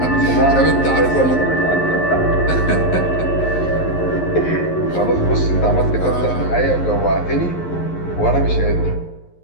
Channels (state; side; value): late; right; 11 ms